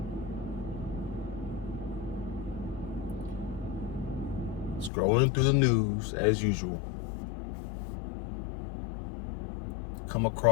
Scrolling through the news as usual. Come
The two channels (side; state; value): right; drops out; at 4.9 s